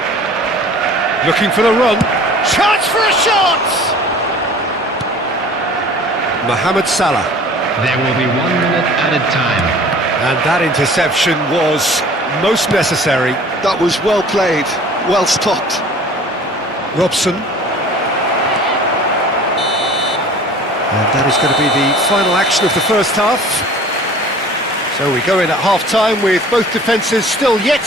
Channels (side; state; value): both; normal; correlation 0.47